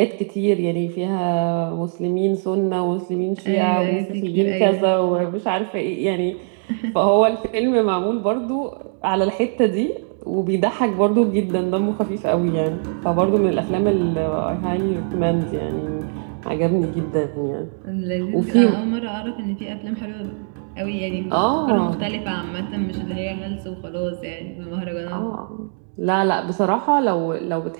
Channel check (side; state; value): left; silent; digital silence